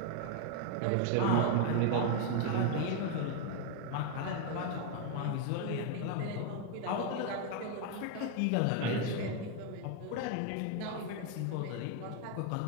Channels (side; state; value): both; different; correlation 0.00